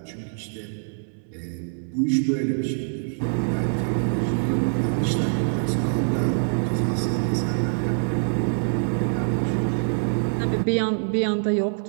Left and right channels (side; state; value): left; silent; 62 dB below the other